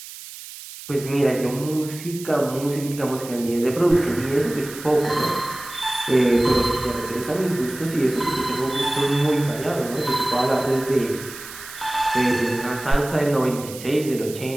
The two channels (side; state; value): right; noise; hiss, 14 dB below the sound